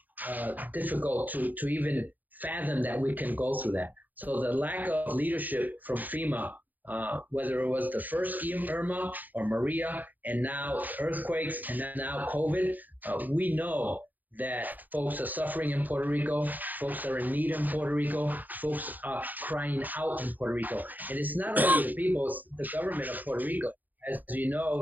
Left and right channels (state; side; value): late; left; 0.084 ms